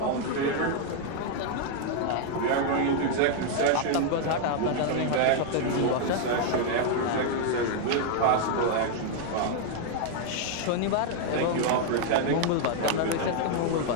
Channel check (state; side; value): different; both; correlation 0.00